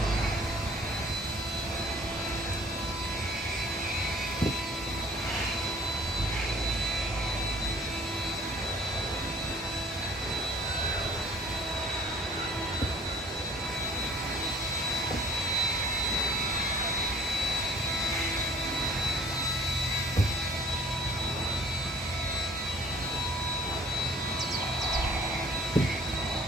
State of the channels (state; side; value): normal; both; correlation 0.54